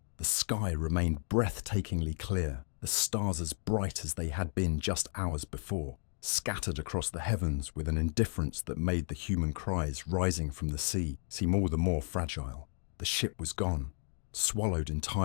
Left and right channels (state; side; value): silent; right; digital silence